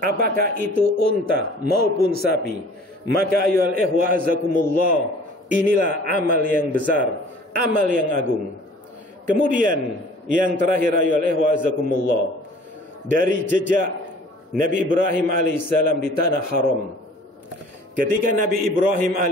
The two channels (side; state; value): both; normal; correlation 0.49